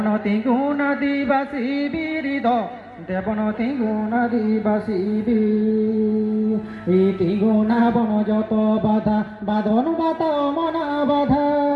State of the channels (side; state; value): both; identical; correlation 1.00